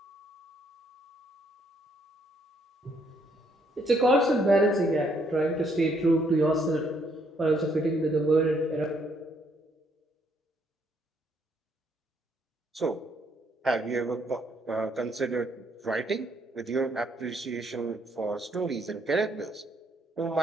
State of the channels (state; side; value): normal; both; correlation 0.70